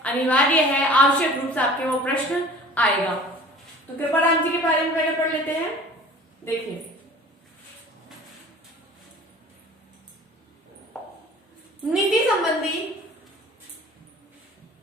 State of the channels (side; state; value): both; normal; correlation 0.45